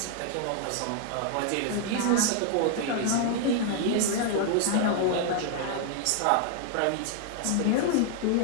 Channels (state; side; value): different; both; correlation 0.00